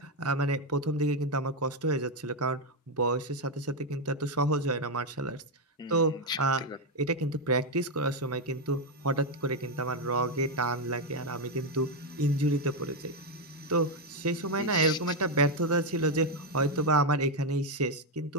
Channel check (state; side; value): normal; both; correlation 0.04